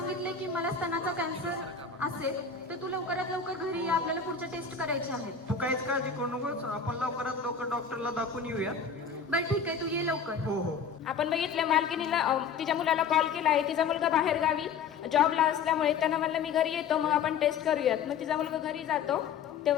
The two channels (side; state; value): right; quieter; 6.2 dB